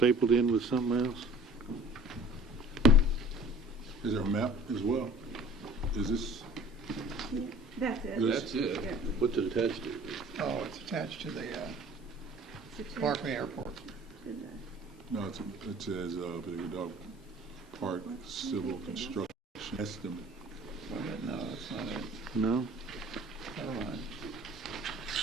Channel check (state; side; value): normal; both; correlation 0.48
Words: in with something else? Is there a map as well? Is this? That's it. That's it. Yeah. What's it attached to? Oh, it's attached to the Barkley Airport. No, it says Big Dog Park Civil Construction Estimate. No, that's not it. No? Never mind.